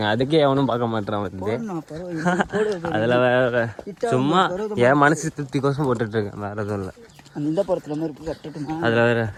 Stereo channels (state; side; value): identical; both; correlation 1.00